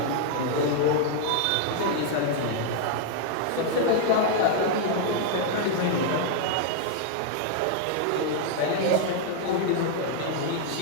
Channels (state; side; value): different; both; correlation 0.00